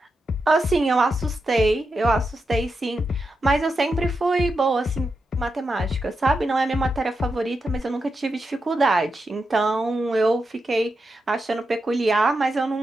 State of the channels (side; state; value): both; normal; correlation 0.87